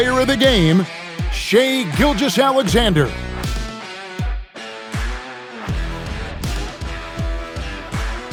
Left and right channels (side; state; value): both; identical; correlation 1.00